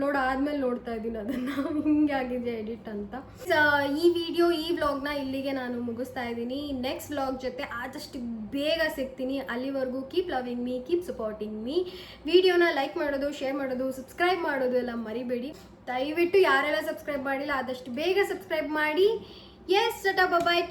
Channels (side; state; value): both; identical; correlation 1.00